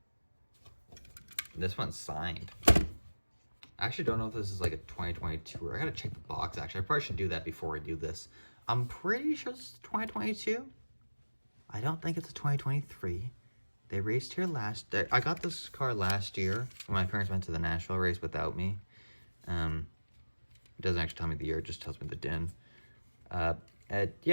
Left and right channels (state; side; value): inverted; both; correlation -1.00